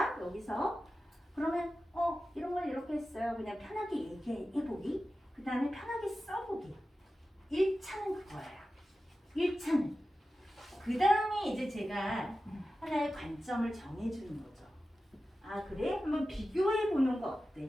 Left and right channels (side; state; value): both; normal; correlation 0.94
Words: 여기서 그러면 이런 걸 이렇게 했어요. 그냥 편하게 얘기해보기. 그 다음에 편하게 써보기. 1차는 그거예요. 1차는. 그 다음에 이제 제가 하나의 관점을 정해주는 거죠. 아 그래? 한번 비교해보는 거